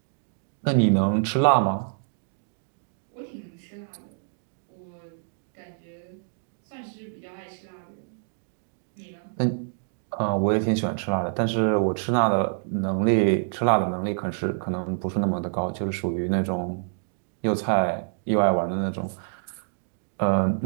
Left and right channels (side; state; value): left; silent; digital silence